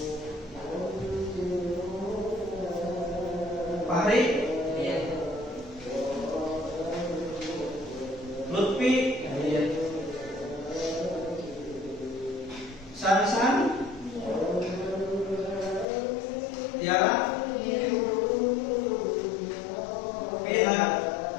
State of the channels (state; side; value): drops out; right; at 15.9 s